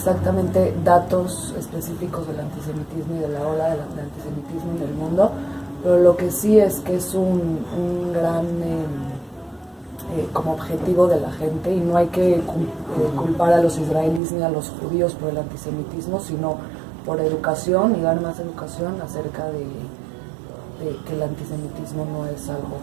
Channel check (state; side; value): drops out; left; at 14.2 s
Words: datos específicos del antisemitismo y de la ola del antisemitismo en el mundo, pero lo que sí es que es un gran como objetivo de la gente, y no hay que culpar a los israelíes ni a los judíos por el antisemitismo, sino por educación y dar más educación acerca de que el antisemitismo no es algo